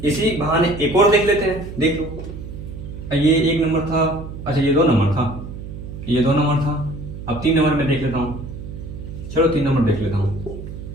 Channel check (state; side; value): noise; right; hum, 10 dB below the sound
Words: इसी बहाने एक और देख लेते हैं, देख लो, ये 1 नंबर था, अच्छा ये 2 नंबर था, ये 2 नंबर था, अब 3 नंबर में देख लेता हूँ, चलो 3 नंबर देख लेता हूँ।